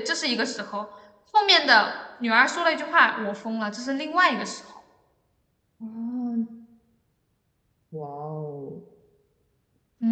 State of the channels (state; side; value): identical; both; correlation 1.00